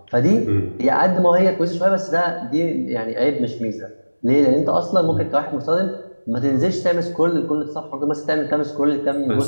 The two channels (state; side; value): inverted; both; correlation -1.00